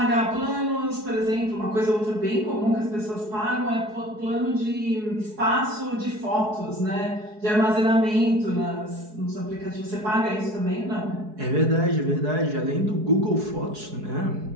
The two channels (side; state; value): left; late; 4.7 ms